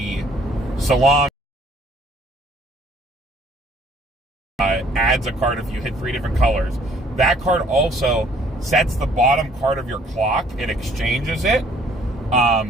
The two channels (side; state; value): both; normal; correlation 0.60